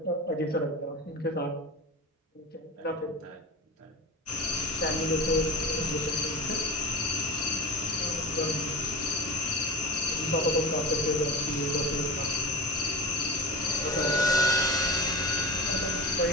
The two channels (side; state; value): both; normal; correlation 0.32